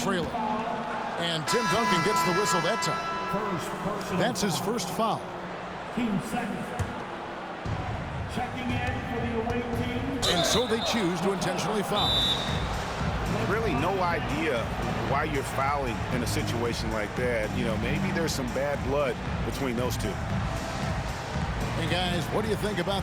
And Tim Duncan gets the whistle that time. That's his first foul. Team second. Checking in for the away team. And so they choose to intentionally foul. Really no idea why you're fouling in a situation like that. You know, maybe there's some bad blood between those two. Hey guys, what do you think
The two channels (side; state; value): both; identical; correlation 1.00